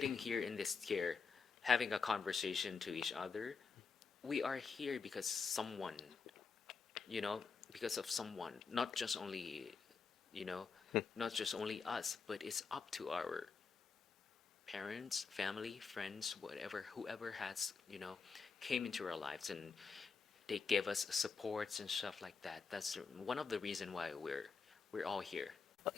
here in this chair, having a conversation to each other. We are here because someone, you know, because of someone, not just only, you know, not just only us, but it's up to our parents, family, friends, whatever, whoever has, came into our lives and they gave us supports and stuff like that. That's one of the reason why we're all here.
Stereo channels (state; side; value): quieter; right; 5.2 dB